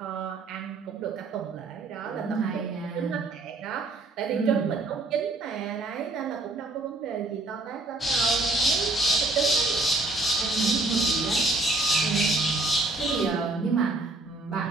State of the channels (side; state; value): left; quieter; 3.1 dB